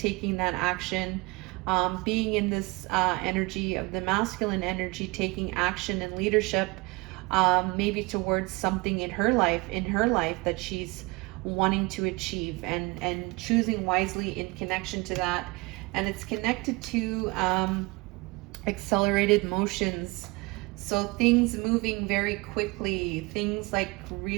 that action, being in this energy of the masculine energy, taking action and leadership, maybe towards something in her life that she's wanting to achieve, and choosing wisely in connection to that. And it's connected to accelerated motions. So things moving very quickly, things like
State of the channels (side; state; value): left; quieter; 25.2 dB